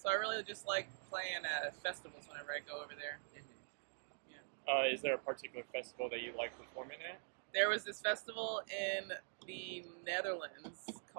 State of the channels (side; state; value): left; silent; digital silence